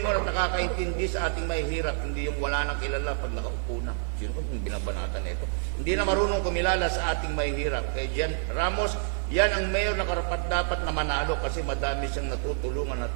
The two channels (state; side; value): silent; left; digital silence